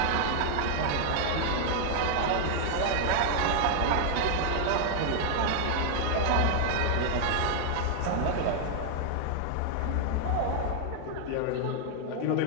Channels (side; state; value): both; different; correlation 0.00